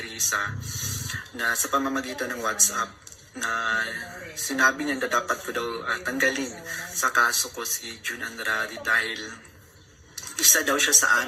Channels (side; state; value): both; identical; correlation 1.00